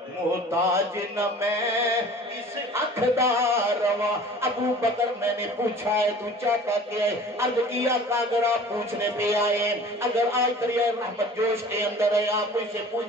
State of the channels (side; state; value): both; normal; correlation 0.45